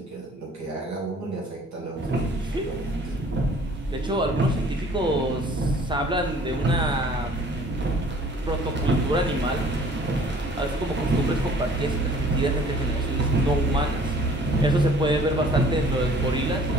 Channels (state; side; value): normal; both; correlation 0.53